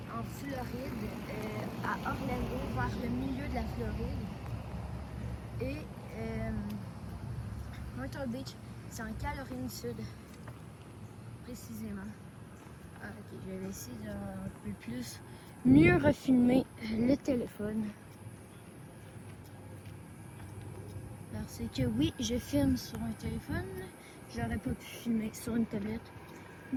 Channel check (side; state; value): both; identical; correlation 1.00